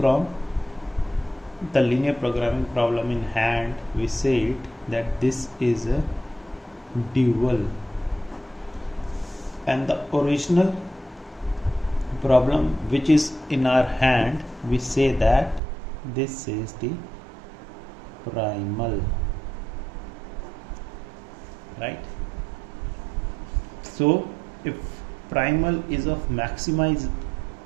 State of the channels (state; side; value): drops out; left; at 15.6 s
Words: the linear programming problem in hand. We say it that this is a dual, and the original problem which is in our hand, we say that this is the primal, right? So if primal is of